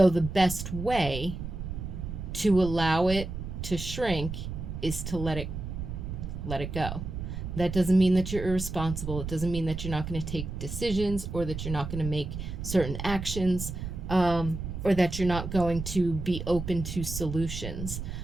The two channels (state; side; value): noise; right; rumble, 6 dB below the sound